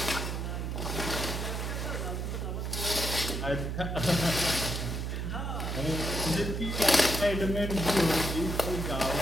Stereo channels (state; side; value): noise; right; hum, 2 dB below the sound